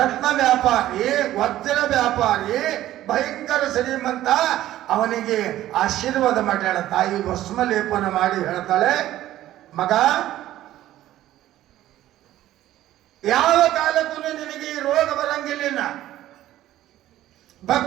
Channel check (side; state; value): left; quieter; 13.8 dB